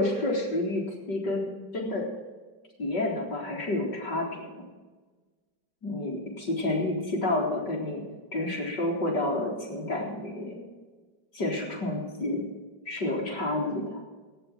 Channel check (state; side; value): late; right; 5.2 ms